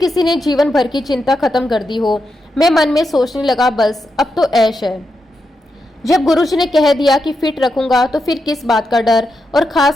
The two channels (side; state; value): both; normal; correlation 0.85